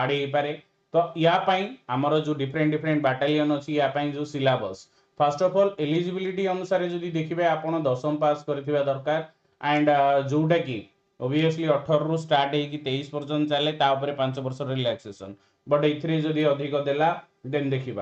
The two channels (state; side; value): identical; both; correlation 1.00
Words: हो पारे। तो यापाई आमर जो डिफरेंट डिफरेंट बैटालियन अच्छी यापाई जो syllabus first of all eligibility अनुसार जदि देखिए आपण 10वीं पास करथिबा दरकार एंड जोटा कि ऑब्वियसली 18 रु स्टार्ट होगी 23 पर्यंत चले तापर 5 वर्ष रिलैक्सेशन बट एथिरे जदि अधिक देला देन